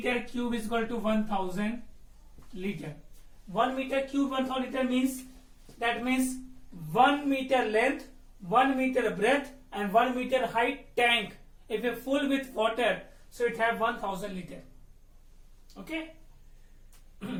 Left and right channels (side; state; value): both; identical; correlation 1.00